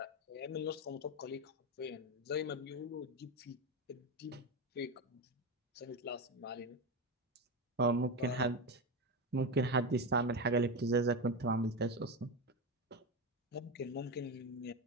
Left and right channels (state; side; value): normal; both; correlation 0.15